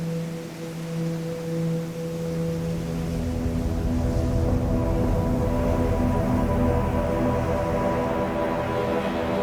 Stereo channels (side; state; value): both; identical; correlation 1.00